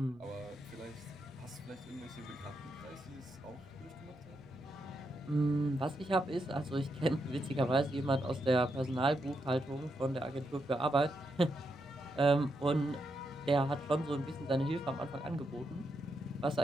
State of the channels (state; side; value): noise; right; rumble, 29 dB below the sound